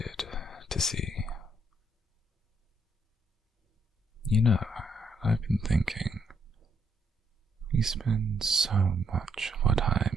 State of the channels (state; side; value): normal; both; correlation 0.73